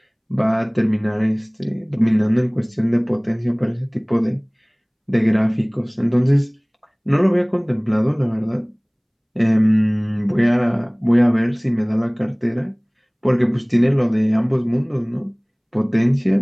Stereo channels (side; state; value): both; identical; correlation 1.00